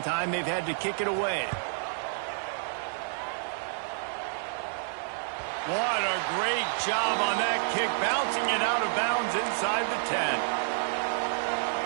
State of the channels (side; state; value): left; silent; digital silence